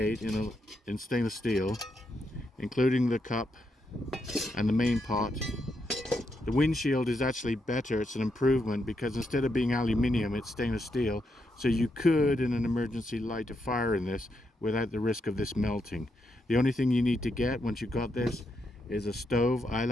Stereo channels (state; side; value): normal; both; correlation 0.81